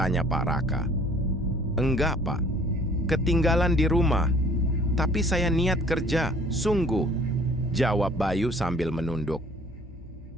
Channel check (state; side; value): normal; both; correlation 0.54